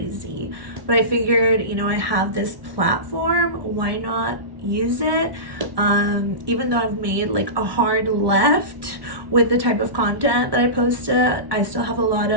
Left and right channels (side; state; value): left; late; 1.1 ms